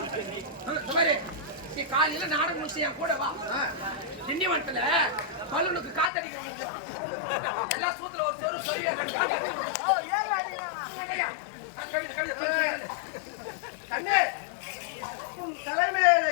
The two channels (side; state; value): right; drops out; at 6.1 s